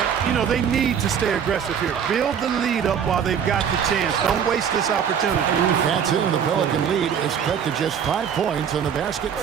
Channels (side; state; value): left; quieter; 7.9 dB